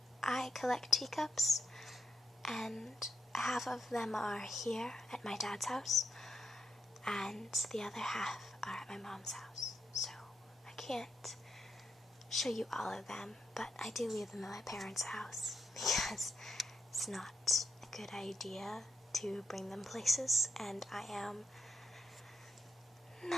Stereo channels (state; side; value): normal; both; correlation 0.80